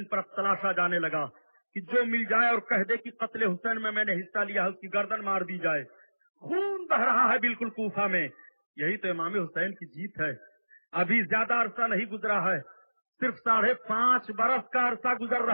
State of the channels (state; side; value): inverted; both; correlation -1.00